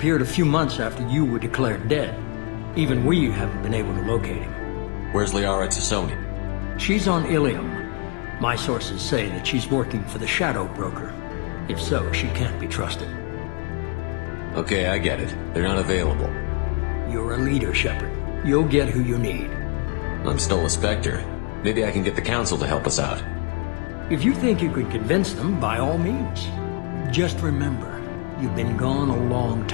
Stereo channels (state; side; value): quieter; right; 35.7 dB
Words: a few months after you were declared dead. Even we haven't been able to locate him. Where's Liara Tassoni? She's on Ilium. My sources say that she's working for the Shadow Broker. If so, she can't be trusted. Okay, I get it. They're not available. You're a leader, Shepard. You'll get who you need. I'm still a Spectre. Maybe I can get the Council to help us out. If you think you can convince them, by all means. Just remember, you've been gone a long